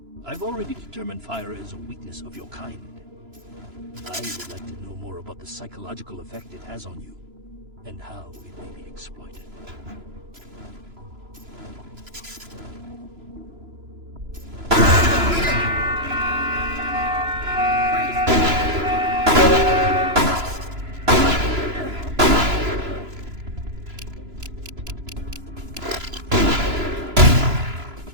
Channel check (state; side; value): late; left; 3.0 ms